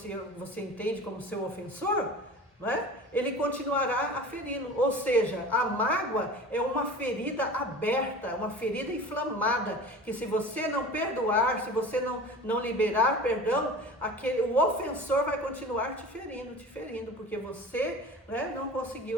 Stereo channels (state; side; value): normal; both; correlation 0.37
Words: entende como seu ofensor, né, ele continuará aferindo. Ou seja, a mágoa é uma ferida aberta, uma ferida inflamada, que se você não perdoar, se você não liberar perdão, o ofensor vai continuar te ferindo, porque você, né, não